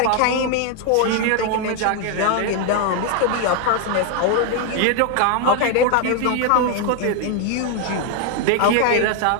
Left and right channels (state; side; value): different; both; correlation 0.01